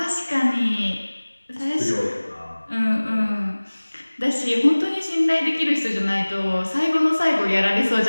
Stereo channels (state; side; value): inverted; both; correlation -1.00